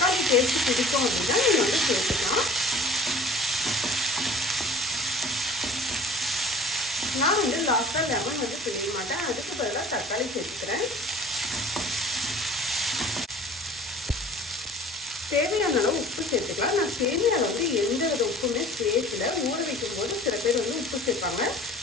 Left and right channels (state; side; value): normal; both; correlation 0.46